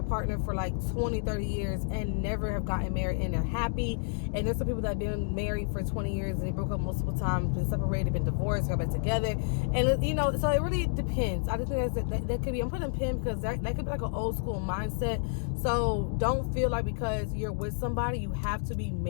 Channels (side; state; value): right; silent; digital silence